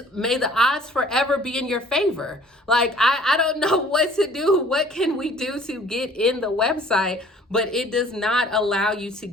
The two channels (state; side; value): normal; both; correlation 0.53